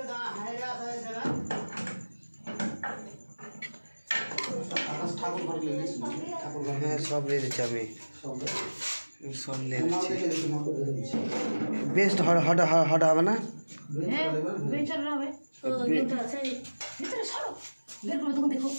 না হাইরা আছে না। আকাশ ঠাকুর ঘর নিয়ে গেছি, ঠাকুর ঘর হ্যাঁ সব নিয়ে দিচ্ছি আমি, সব নিয়ে দিচ্ছি। দিচ্ছি বেস্ট হট হট হবে না? হ্যাঁ বেচার হবে তো গেমটা আছে ভিতরে সরো বের করে তখন দেখো।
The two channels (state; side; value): inverted; both; correlation -1.00